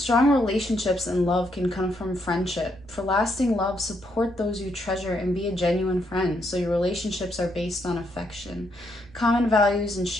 relationships and love can come from friendship. For lasting love, support those you treasure and be a genuine friend, so your relationships are based on affection, common values, and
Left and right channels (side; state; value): right; noise; rumble, 23 dB below the sound